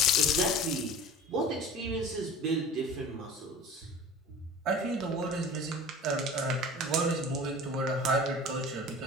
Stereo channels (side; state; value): both; normal; correlation 0.39